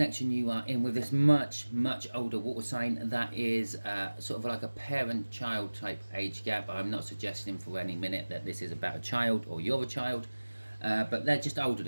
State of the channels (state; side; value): inverted; both; correlation -1.00